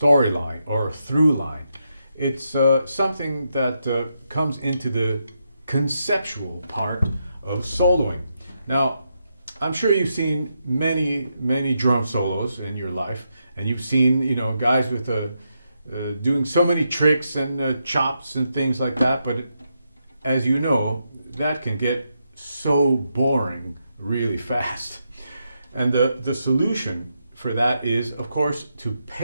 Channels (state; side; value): inverted; both; correlation -0.83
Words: or a through line. It's something that comes into the conceptual part of soloing. Now, I'm sure you've seen many drum solos in your life, and you've seen guys with doing so many tricks and chops and things like that. But as you know, that can get so boring really fast. And the solution for that is, of course, to